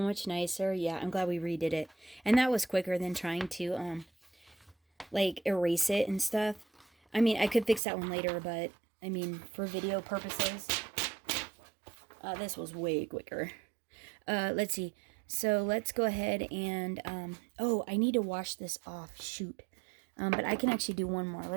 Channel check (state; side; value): drops out; left; at 7.8 s